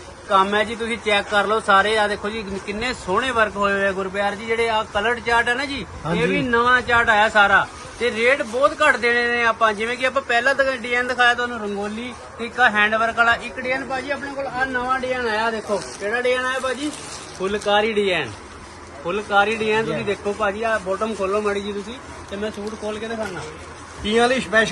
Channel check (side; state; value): both; identical; correlation 1.00